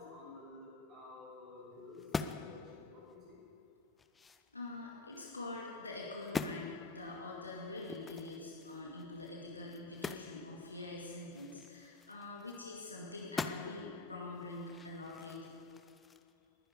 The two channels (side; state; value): right; quieter; 3.3 dB